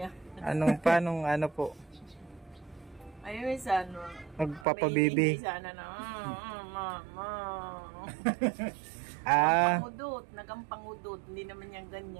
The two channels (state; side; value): drops out; left; at 4.7 s